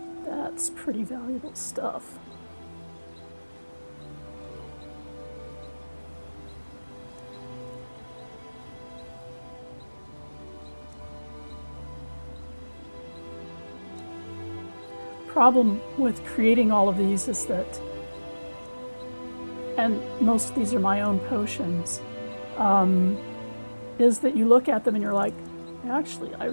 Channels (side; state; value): both; inverted; correlation -1.00